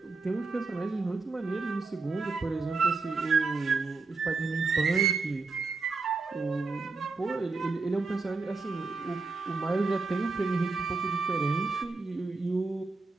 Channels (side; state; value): left; quieter; 4.0 dB